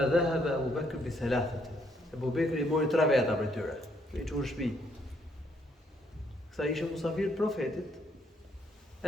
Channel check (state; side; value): normal; both; correlation 0.71